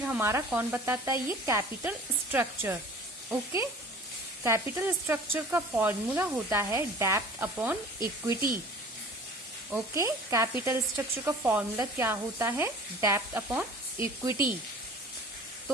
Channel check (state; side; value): normal; both; correlation 0.45